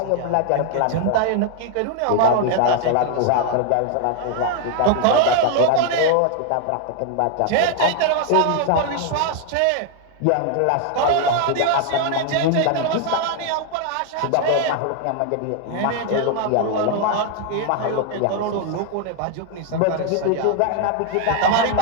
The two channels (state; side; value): different; both; correlation 0.00